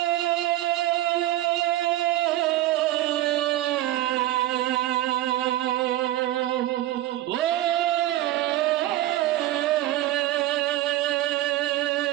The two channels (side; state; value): left; quieter; 15.0 dB